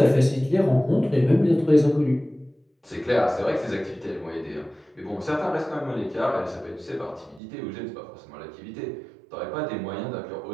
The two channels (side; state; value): left; drops out; at 7.4 s